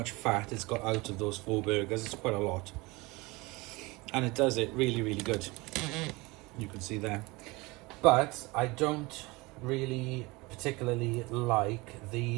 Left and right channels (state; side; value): quieter; left; 23.6 dB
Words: fat it's got out of those 4 burgers. It's quite a lot. And it does it really, really good. You can see there. But I don't really particularly like